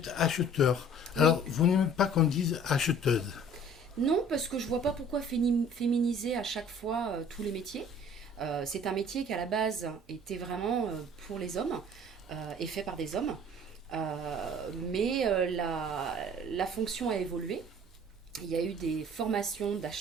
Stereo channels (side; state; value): both; normal; correlation 0.50